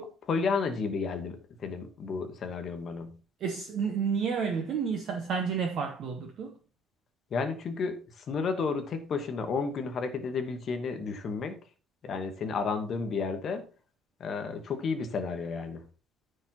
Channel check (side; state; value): both; normal; correlation 0.59